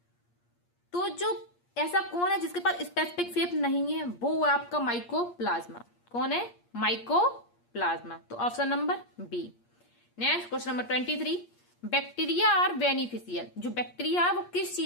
तो जो ऐसा कौन है जिसके पास स्पेसिफिक शेप नहीं है, वो है आपका माइकोप्लाज्मा। कौन है, माइकोप्लाज्मा। तो option number B. Next question number 23, bacteria are beneficial. जो बैक्टीरिया है वो किस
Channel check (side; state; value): right; late; 8.5 ms